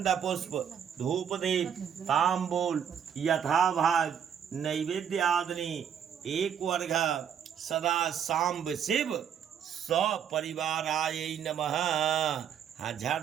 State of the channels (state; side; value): quieter; left; 8.3 dB